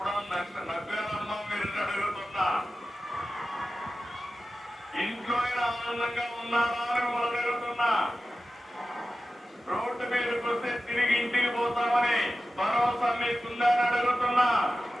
నవ్వారమ్మా మీరు అడుగుతున్నా? ఇంట్లో ఆనందంగా ఉన్నారా అని మనం అడుగుతున్నా? రోడ్డు మీదకి వస్తే తిరిగి ఇంటికి పోతామని భరోసా మీకుందని అడుగుతున్నా?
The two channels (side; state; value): both; normal; correlation 0.94